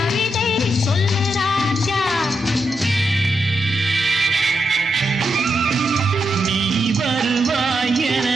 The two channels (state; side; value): normal; both; correlation 0.84